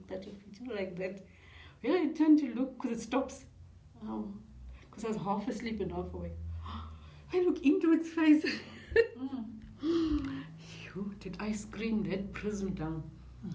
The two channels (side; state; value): both; identical; correlation 1.00